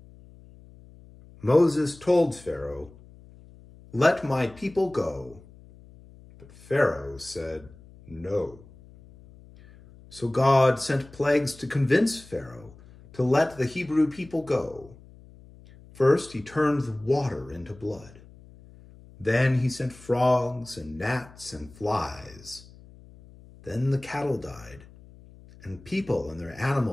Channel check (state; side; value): noise; left; hum, 22 dB below the sound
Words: Moses told Pharaoh, "Let my people go." But Pharaoh said, "No." So God sent plagues to convince Pharaoh to let the Hebrew people go. First, he turned the water into blood. Then he sent frogs and gnats and flies. Then the cattle died, and people and their